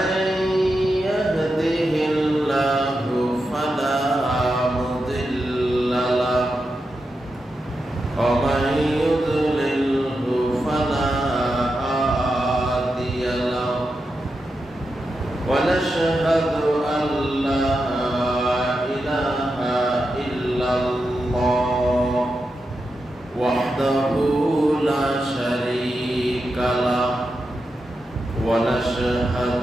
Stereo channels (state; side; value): normal; both; correlation 0.88